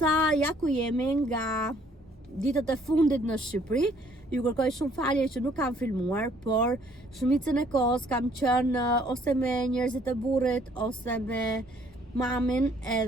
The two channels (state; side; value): normal; both; correlation 0.62